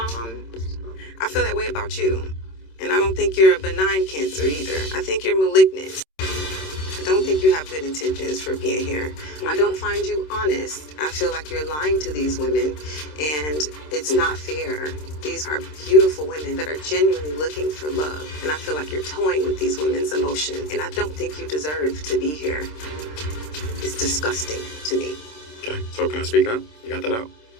feel that way about you, and I don't think you're a benign cancer either. I think you're malignant. I don't think you have good intentions for being here. I don't find you honest. I feel like you're lying to these women, and it's not fair. These are beautiful women that are genuinely looking for love, and I feel like you're toying with these women's emotion, and I don't think you deserve to be here. It's disgusting to me. Okay, so can I speak now? You got that out?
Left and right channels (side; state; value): right; late; 26 ms